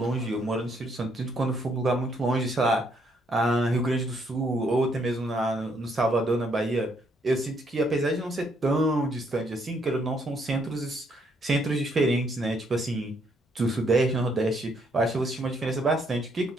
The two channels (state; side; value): normal; both; correlation 0.71